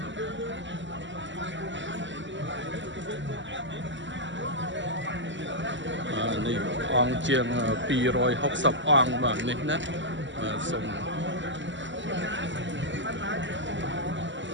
នេះអង្គជាង260អង្គបាទនេះណាសូម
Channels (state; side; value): late; left; 0.54 ms